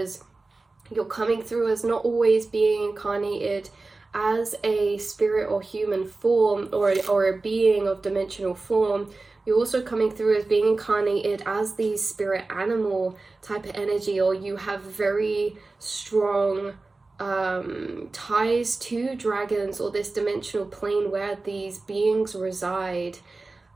you're coming through as not always being incarnated as a spirit or human form, or a being of dimensional form. You're also coming through as being incarnated as the spirit animal type of energy, or you have very strong ties to dragons or this dimensional plane where these beings reside.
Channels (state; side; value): quieter; left; 3.4 dB